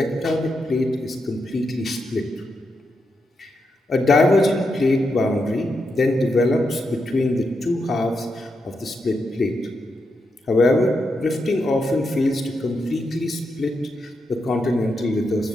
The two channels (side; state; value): both; normal; correlation 0.84